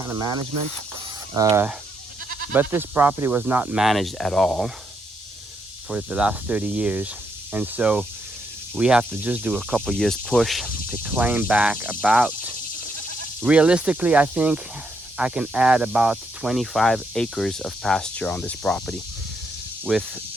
of management. But this property was not managed at all for the last 30 years. And so we have to just do a couple years push to claim back about, realistically, I think I can add about 25 acres of pasture on this property with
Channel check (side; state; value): both; normal; correlation 0.78